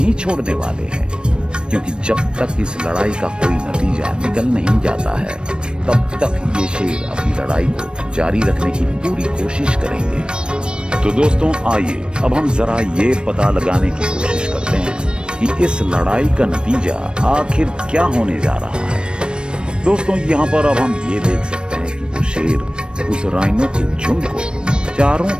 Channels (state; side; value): late; left; 0.053 ms